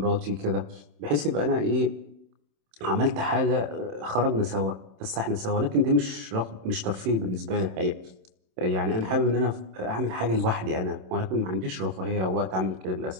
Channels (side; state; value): left; late; 27 ms